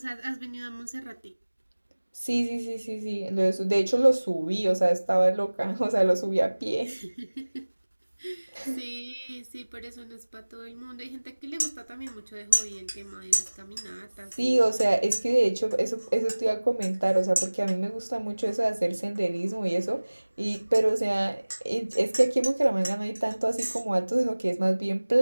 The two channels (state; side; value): inverted; both; correlation -1.00